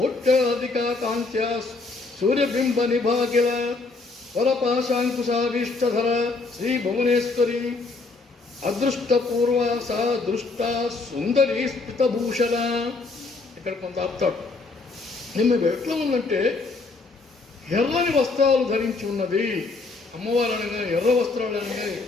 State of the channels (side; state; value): right; quieter; 3.8 dB